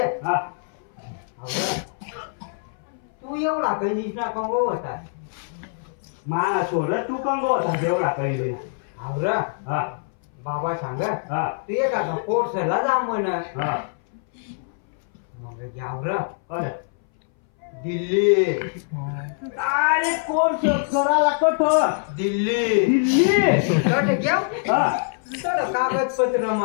हा तू एवढा काही निष्णा कंगो होता माना सोड तू कंगो होता एवढा काही आवरा हा बाबा सांग हा तू एखादा कोर्सला जा म्हण हा मग घ्यावर अरे दिल्ली अरे कोर्स करायला कठोर दिल्ली दिल्ली तर घ्याव हा तर कागदपत्र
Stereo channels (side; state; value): right; silent; 60 dB below the other